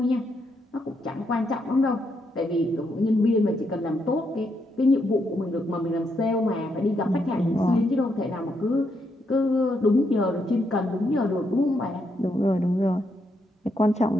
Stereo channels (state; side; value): normal; both; correlation 0.78